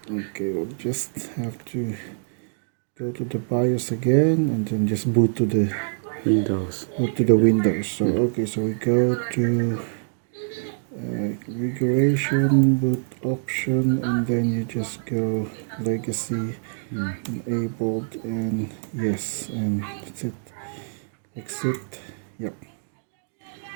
Okay, we'll just have to go to the BIOS again and then just boot to the Windows. Boot to the Windows. So okay, so we go to configuration, boot option, and then you just go legacy enabled, and yes, and that's it. Exit. Yep.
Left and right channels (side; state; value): left; silent; digital silence